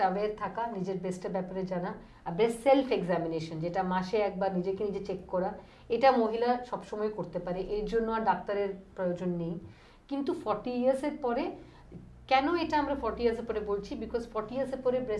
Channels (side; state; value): both; identical; correlation 1.00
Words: অ্যাওয়্যার থাকা, নিজের ব্রেস্টের ব্যাপারে জানা, আর ব্রেস্ট সেলফ এক্সামিনেশন যেটা মাসে একবার নিজেকে নিজে চেক করা, এটা মহিলা সবসময় করতে পারে, এর জন্য আর ডাক্তারের প্রয়োজন নেই। কিন্তু 40 ইয়ার্সের পরে, কেন এটা আমরা 40 ইয়ার্সের পরে বলছি, বিকজ 40 ইয়ার্সের পরে